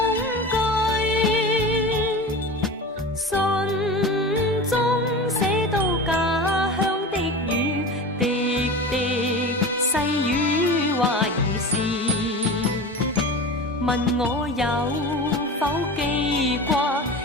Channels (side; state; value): both; normal; correlation 0.31